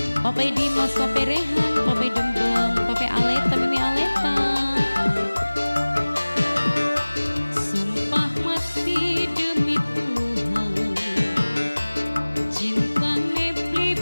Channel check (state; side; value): inverted; both; correlation -1.00